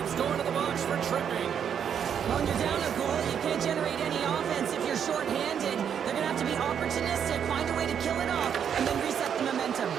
going to the box for tripping. When you're down a goal, you can't generate any offense if you're short-handed. They're going to have to be opportunistic, find a way to kill it off, and then reset the momentum.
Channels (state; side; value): quieter; left; 8.1 dB